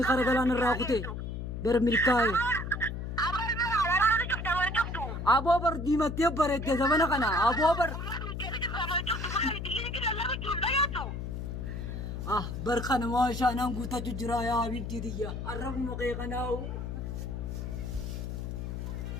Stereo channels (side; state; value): left; noise; hum, 5 dB below the sound